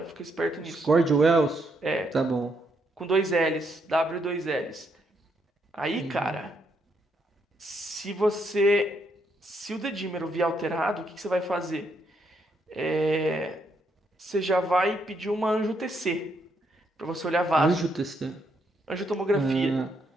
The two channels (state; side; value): normal; both; correlation 0.76